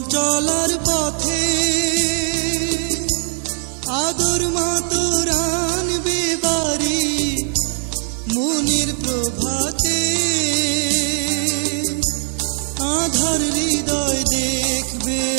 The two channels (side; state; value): left; silent; 58 dB below the other